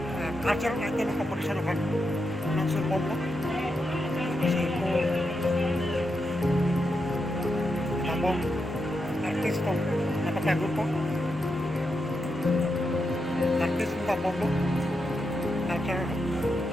culture item competition kan langsung bombo sipo tambong artis tong napapagod po artis tambong lo culture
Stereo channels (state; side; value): normal; both; correlation 0.85